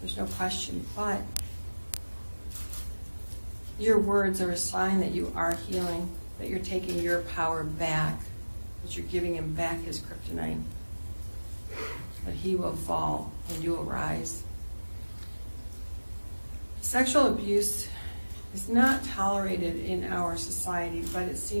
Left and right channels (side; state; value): both; inverted; correlation -1.00